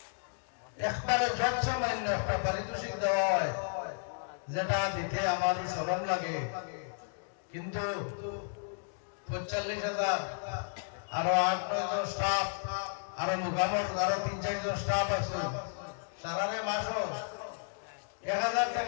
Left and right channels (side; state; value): right; silent; digital silence